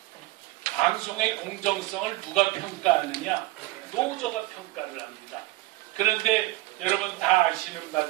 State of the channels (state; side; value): quieter; left; 18.8 dB